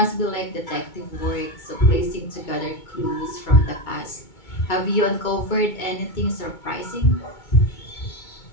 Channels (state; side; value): late; right; 2.2 ms